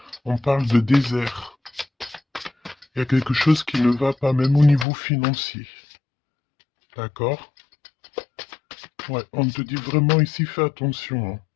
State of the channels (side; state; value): right; drops out; at 4.9 s